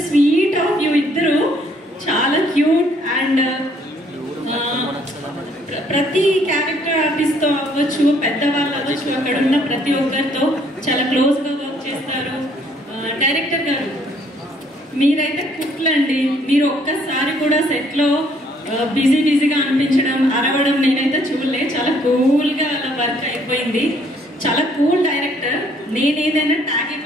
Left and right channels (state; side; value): normal; both; correlation 0.64